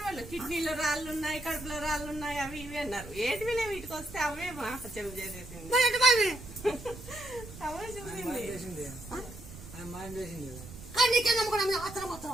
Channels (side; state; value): right; noise; rumble, 14 dB below the sound